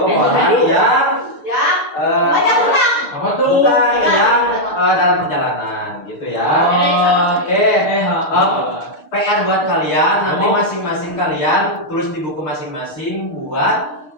yang Ya. Banyak hutang. Apa tuh? bukan yang dalam perjalanan gitu ya. Oke. PR buat kalian, nanti masing-masing kalian tulis di buku masing-masing buat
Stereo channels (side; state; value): right; late; 6.6 ms